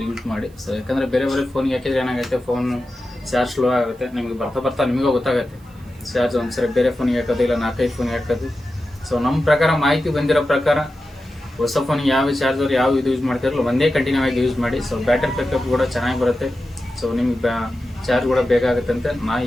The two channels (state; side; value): noise; right; hiss, 30 dB below the sound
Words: ಯೂಸ್ ಮಾಡಿ. ಸೊ ಯಾಕಂದರೆ ಬೇರೆ ಫೋನ್ಗೆ ಹಾಕಿದ್ರೆ ಏನಾಗುತ್ತೆ, ಫೋನ್ ಚಾರ್ಜ್ ಸ್ಲೋ ಆಗುತ್ತೆ. ನಿಮಗೆ ಬರ್ತಾ ನಿಮಗೂ ಗೊತ್ತಾಗುತ್ತೆ ಚಾರ್ಜ್ ಒಂದ್ಸರಿ ಬೇರೆ ಫೋನಿಗೆ ಹಾಕೋದು ಇಲ್ಲ 4-5 ಫೋನಿಗೆ ಹಾಕೋದು. ಸೊ ನಮ್ಮ ಪ್ರಕಾರ ಮಾಹಿತಿ ಬಂದಿರೋ ಪ್ರಕಾರ ಹೊಸ ಫೋನಿಗೆ ಯಾವ ಚಾರ್ಜರ್ ಯಾವ ಇದು ಯೂಸ್ ಮಾಡ್ತಿರಲ್ಲ ಒಂದೇ ಕಂಟಿನ್ಯೂ ಆಗಿ ಯೂಸ್ ಮಾಡಿ. ಸೊ ಬ್ಯಾಟರಿ ಬ್ಯಾಕಪ್ ಕೂಡ ಚೆನ್ನಾಗಿ ಬರುತ್ತೆ. ಸೊ ನಿಮ್ಗೆ ಚಾರ್ಜ್ ಕೂಡ ಬೇಕಾಗುತ್ತೆ ಅಂತ ನಾನು